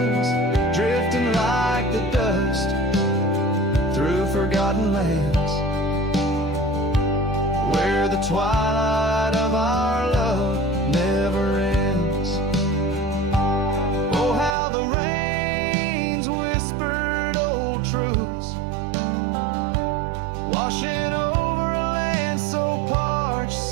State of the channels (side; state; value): left; drops out; at 14.6 s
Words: drifting like the dust through forgotten lands, where the twilight of our love never ends. Oh, how the rains whispered old truths, washing over a land so parched,